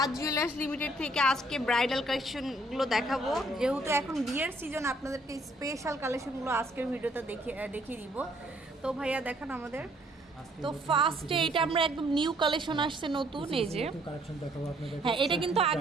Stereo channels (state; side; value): normal; both; correlation 0.64